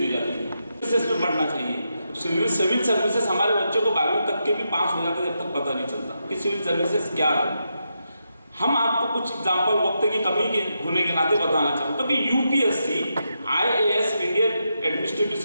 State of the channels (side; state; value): both; inverted; correlation -0.84